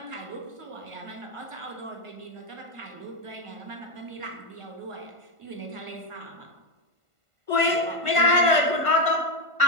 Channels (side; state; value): left; late; 1.5 ms